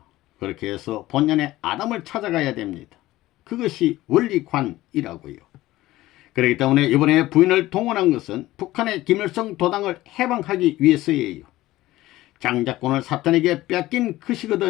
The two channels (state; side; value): quieter; right; 16.8 dB